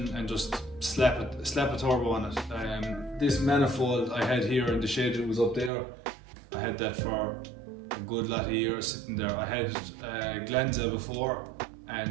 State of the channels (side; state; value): left; drops out; at 5.7 s